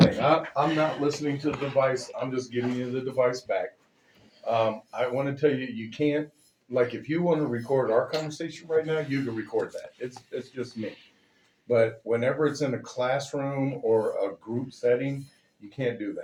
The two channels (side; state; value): both; identical; correlation 1.00